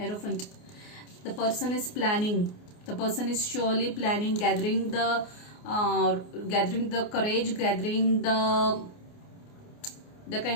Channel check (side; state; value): right; late; 29 ms